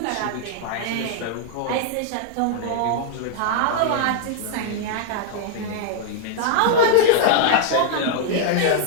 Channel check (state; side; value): different; both; correlation -0.01